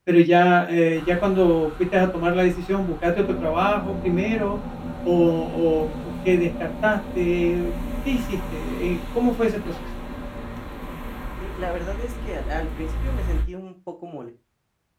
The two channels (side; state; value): both; identical; correlation 1.00